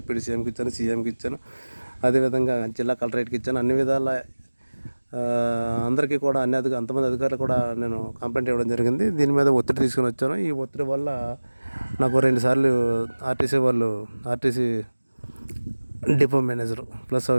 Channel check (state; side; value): inverted; both; correlation -1.00